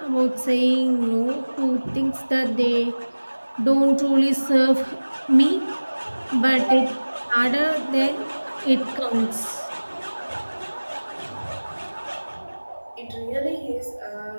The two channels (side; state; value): both; inverted; correlation -1.00